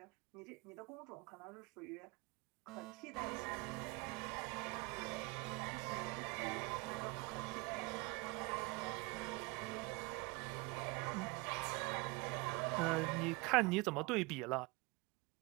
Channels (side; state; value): left; quieter; 25.9 dB